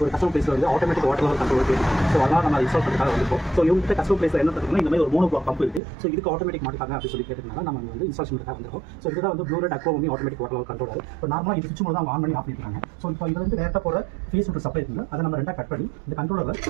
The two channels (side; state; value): left; drops out; at 5.8 s